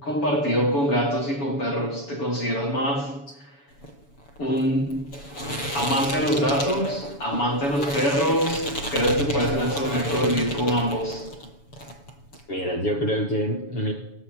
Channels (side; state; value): right; late; 7.1 ms